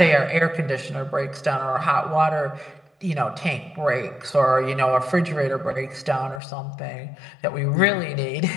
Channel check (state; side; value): drops out; right; at 6.4 s